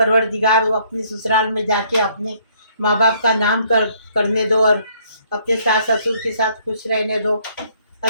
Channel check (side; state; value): both; inverted; correlation -0.64